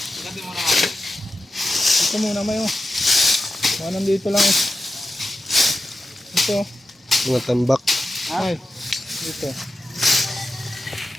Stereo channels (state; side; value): normal; both; correlation 0.90